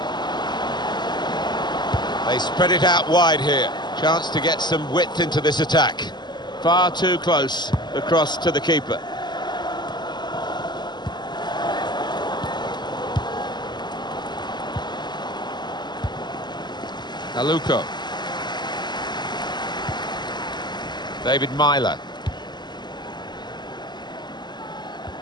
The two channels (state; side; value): late; right; 0.21 ms